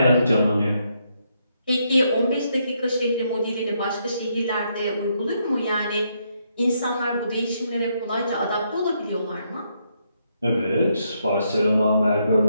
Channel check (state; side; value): inverted; both; correlation -0.76